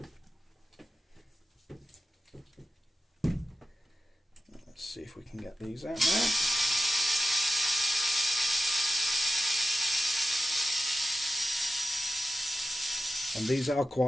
Let's see if we can get these out now. And these are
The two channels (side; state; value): both; normal; correlation 0.92